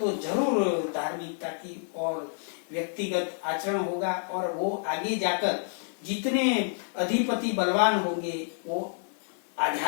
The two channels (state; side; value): silent; right; digital silence